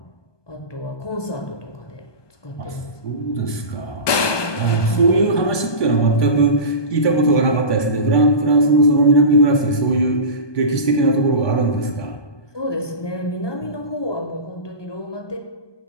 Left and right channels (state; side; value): late; right; 1.2 ms